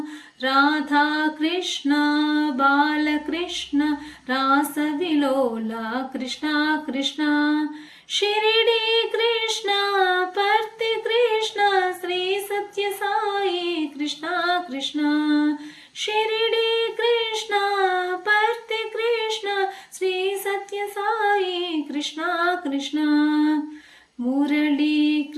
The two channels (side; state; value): both; identical; correlation 1.00